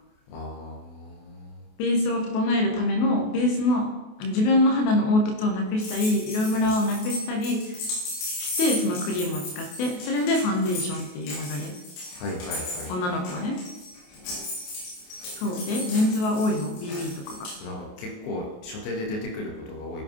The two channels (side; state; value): right; late; 28 ms